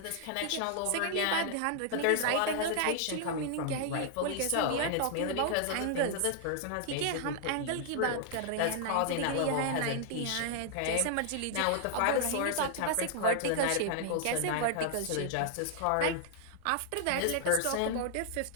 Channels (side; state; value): both; different; correlation 0.00